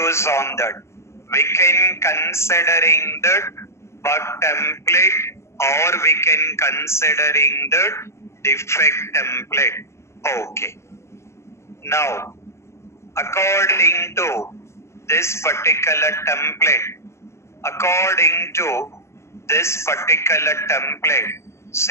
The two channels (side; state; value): right; late; 0.13 ms